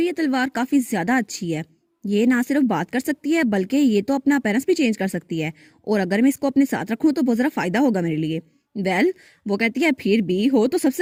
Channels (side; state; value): both; identical; correlation 1.00